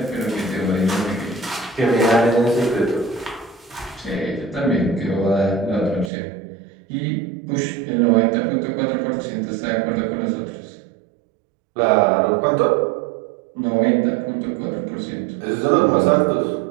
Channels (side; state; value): left; drops out; at 6.1 s